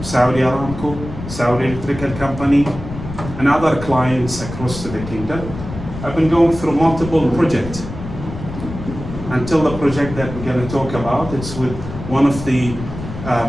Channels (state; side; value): noise; left; rumble, 10 dB below the sound